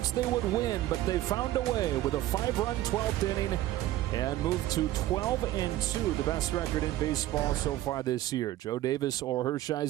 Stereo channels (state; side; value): quieter; left; 14.8 dB